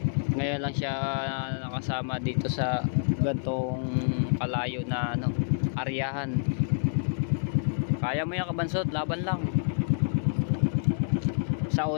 ngayon lang siya nakasama dito sa gantong kalayo na ano, aryahan. Kaya mo yan Kabansot, laban lang. Sa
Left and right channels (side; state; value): right; silent; digital silence